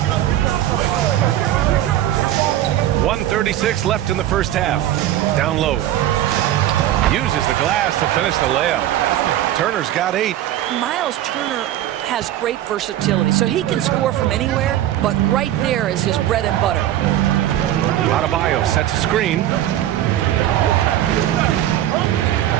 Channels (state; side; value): quieter; left; 12.7 dB